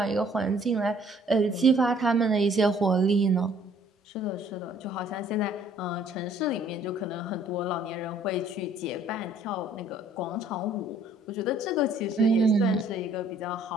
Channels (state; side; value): normal; both; correlation 0.60